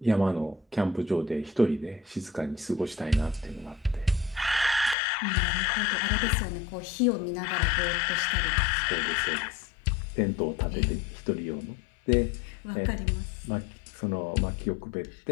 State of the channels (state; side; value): drops out; right; at 5.0 s